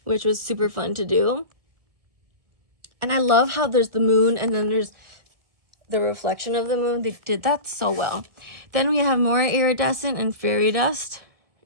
which was super fun to do. And I love how there's the moon and then there's the reflection of the moon. They did that so well. Then we have more iridescent and fairy dust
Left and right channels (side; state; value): left; late; 1.6 ms